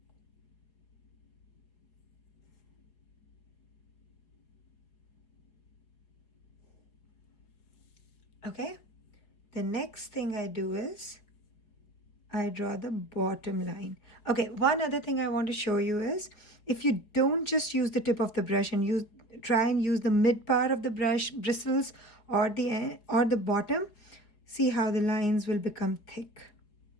Okay, the next thing I do is I draw the bottom line. Okay, one other thing I want to show you is if you don't just use the tip of the brush and try and use the mid part of the brush bristles or the end, or the bottom, see how the lines will become thick.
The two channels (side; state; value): right; late; 4.8 ms